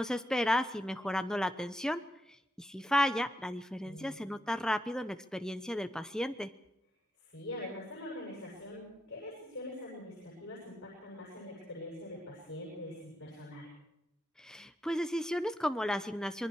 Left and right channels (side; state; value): both; normal; correlation 0.84